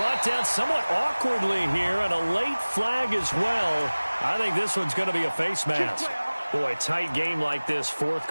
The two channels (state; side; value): inverted; both; correlation -1.00